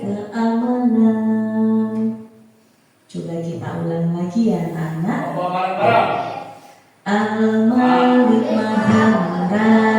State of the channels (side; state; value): both; identical; correlation 1.00